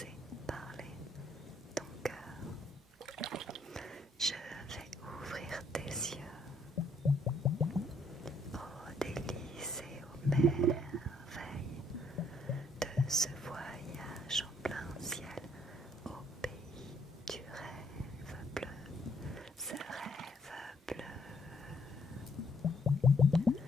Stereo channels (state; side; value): normal; both; correlation 0.68